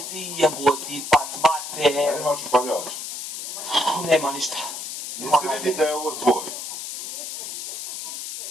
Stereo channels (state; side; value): noise; left; hiss, 7 dB below the sound